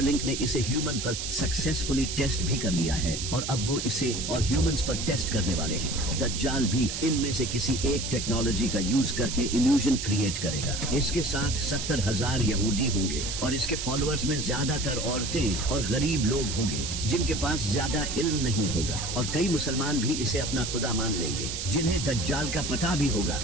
ने इसे ह्यूमन पर सक्सेसफुली टेस्ट भी कर लिया है और अब वो इसे और ह्यूमंस पर टेस्ट करने वाले हैं। दज्जाल भी इनमें से किसी एक टेक्नोलॉजी का यूज करके इल्यूजन क्रिएट करेगा। इसके साथ 70,000 यहूदी होंगे और इसके फॉलोअर्स में ज्यादातर औरतें और गरीब लोग होंगे जिनके पास ज्यादा इल्म नहीं होगा, और कई मुसलमान भी इसे अपना खुदा मान लेंगे जिन्हें दज्जाल का पता भी होगा,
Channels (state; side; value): noise; right; hiss, 5 dB below the sound